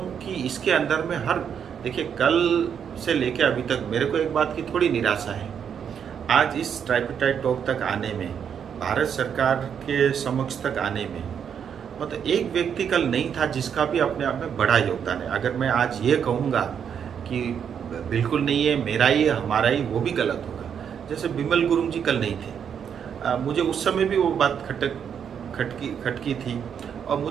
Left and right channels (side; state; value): left; quieter; 7.8 dB